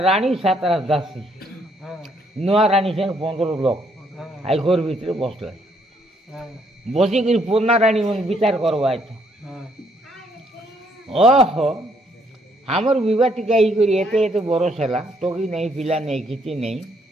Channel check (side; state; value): both; normal; correlation 0.69